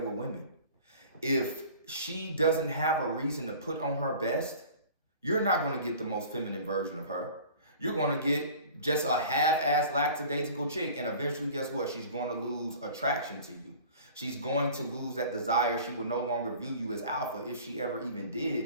women. If she doesn't have a reason to put on her best, you're not going to get the most feminine version of her. You're going to get just a half-ass lackadaisical chick, and eventually, guess what? She's going to lose attraction to you. She's going to lose that desire. She will no longer view you as alpha, if she ever even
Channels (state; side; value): inverted; both; correlation -0.44